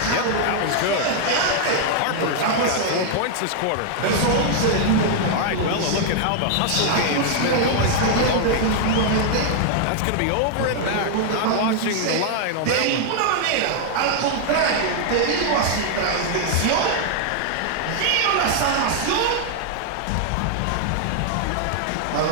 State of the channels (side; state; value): both; different; correlation 0.00